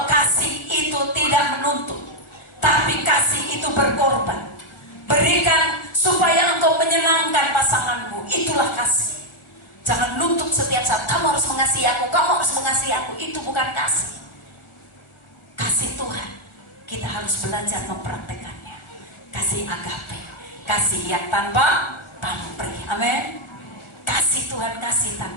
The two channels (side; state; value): right; late; 1.4 ms